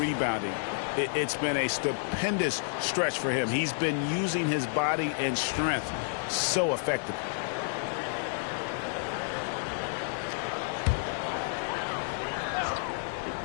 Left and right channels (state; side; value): silent; right; 58 dB below the other